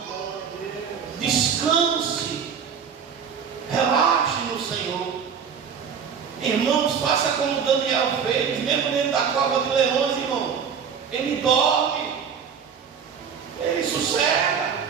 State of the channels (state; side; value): quieter; left; 6.9 dB